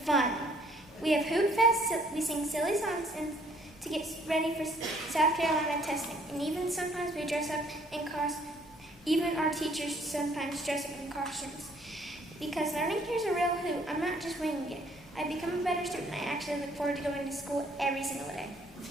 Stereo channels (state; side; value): normal; both; correlation 0.62